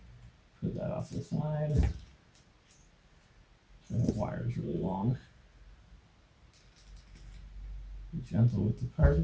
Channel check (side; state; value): both; identical; correlation 1.00